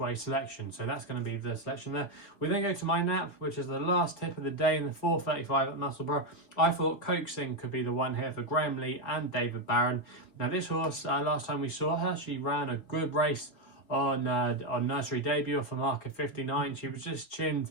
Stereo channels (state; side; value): late; right; 4.3 ms